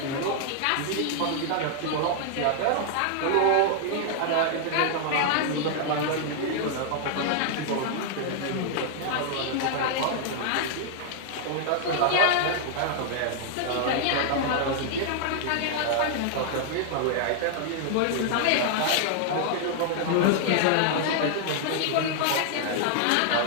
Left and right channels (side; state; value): both; different; correlation -0.01